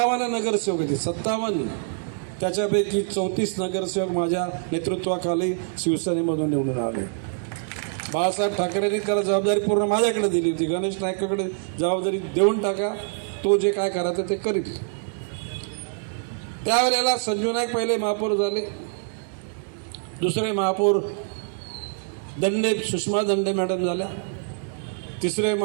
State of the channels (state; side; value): silent; left; digital silence